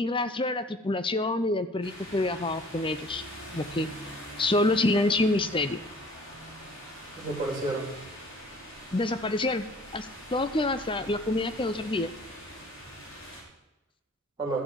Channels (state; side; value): normal; both; correlation 0.51